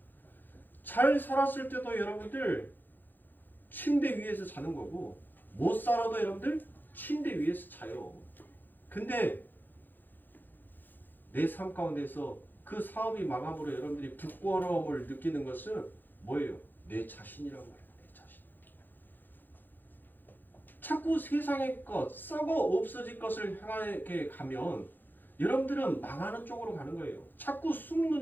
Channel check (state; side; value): late; right; 0.089 ms